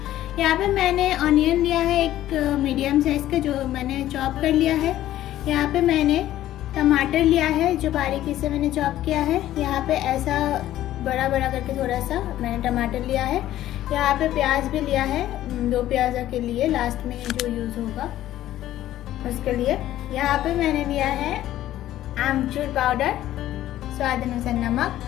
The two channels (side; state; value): right; quieter; 13.5 dB